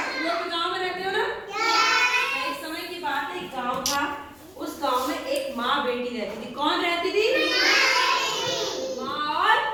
लोग गांव में रहते हो ना? एक समय की बात है, एक गांव था। उस गांव में एक माँ बेटी रहती थी। कौन रहती थी? माँ और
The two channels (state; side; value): noise; left; rumble, 30 dB below the sound